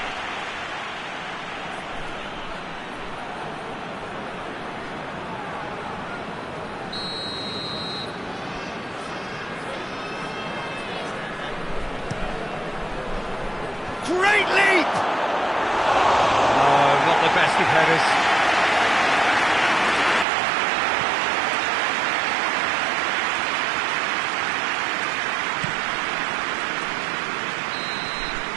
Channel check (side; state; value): left; drops out; at 20.2 s